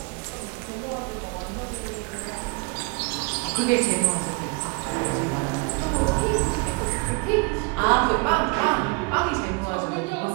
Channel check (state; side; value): quieter; left; 29.9 dB